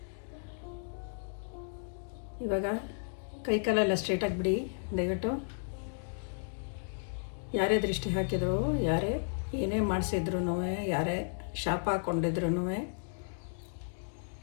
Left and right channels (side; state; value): right; silent; digital silence